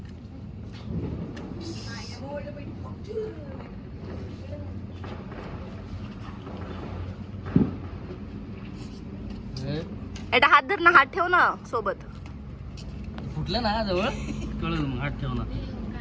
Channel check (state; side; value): identical; both; correlation 1.00